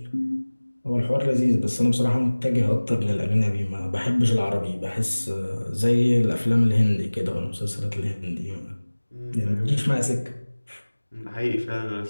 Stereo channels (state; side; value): inverted; both; correlation -1.00